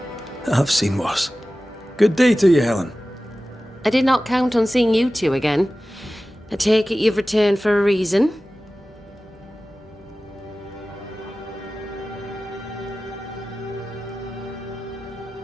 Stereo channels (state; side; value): normal; both; correlation 0.96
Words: I've seen worse. Good day to you, Helen. I did not count on seeing you two again. I take it you've returned for a reason?